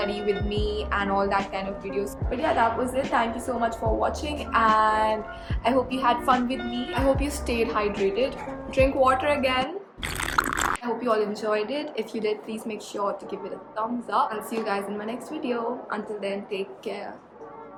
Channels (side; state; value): both; identical; correlation 1.00